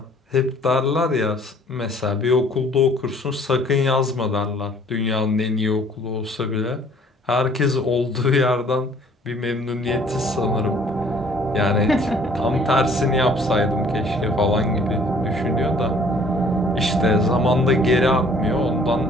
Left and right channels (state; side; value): normal; both; correlation 0.56